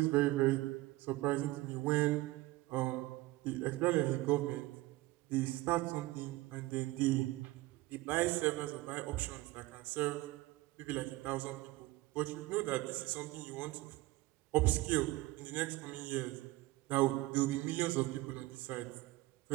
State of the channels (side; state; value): left; quieter; 19.1 dB